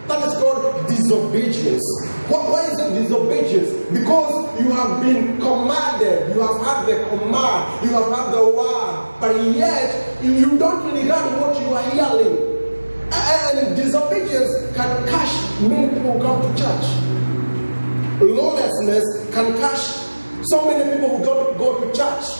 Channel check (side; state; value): both; inverted; correlation -1.00